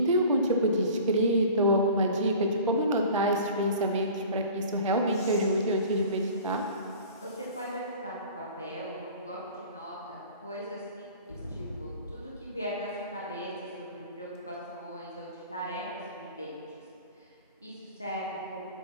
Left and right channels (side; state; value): both; inverted; correlation -0.43